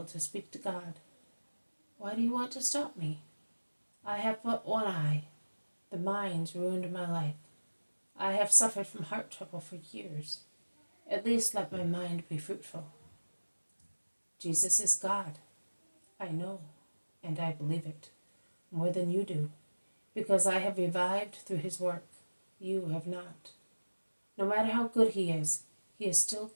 to speak to God. Why do you want to stop me? I have but one eye. The mind's ruined my life. I have suffered from heart trouble for years. At least let my mind be fruitful. Jesus is God. I know, and I believe it, more than you do, because I have revived through his work. You have not. No matter how good he is still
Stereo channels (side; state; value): both; inverted; correlation -1.00